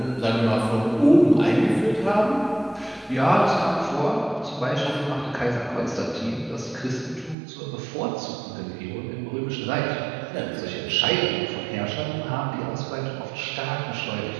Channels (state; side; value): drops out; left; at 7.4 s